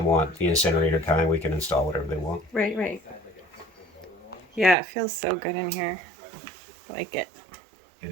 want the incinerator kind. We can install whatever they want. Right. Yeah, it feels so good in here. I like it.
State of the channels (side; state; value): left; drops out; at 4.8 s